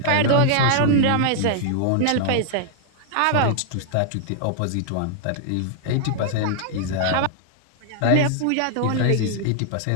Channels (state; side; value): different; both; correlation -0.01